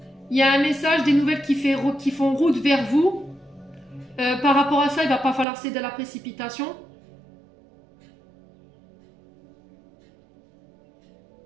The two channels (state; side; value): drops out; left; at 5.5 s